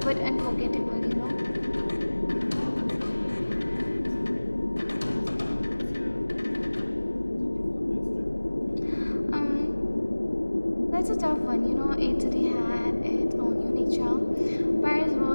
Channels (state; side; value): inverted; both; correlation -1.00